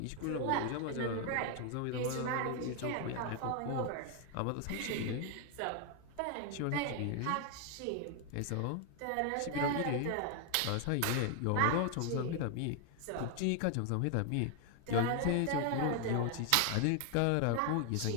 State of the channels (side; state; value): both; different; correlation 0.00